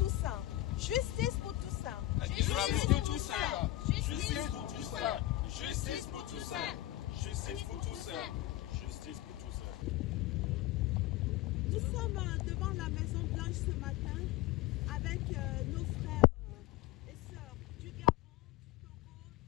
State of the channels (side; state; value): right; quieter; 15.8 dB